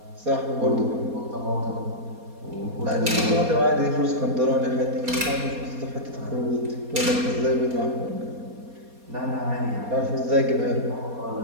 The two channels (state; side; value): late; left; 4.2 ms